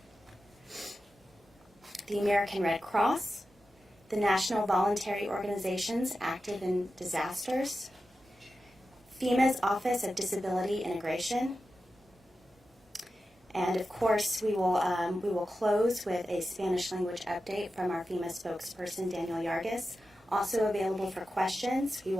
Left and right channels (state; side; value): normal; both; correlation 0.92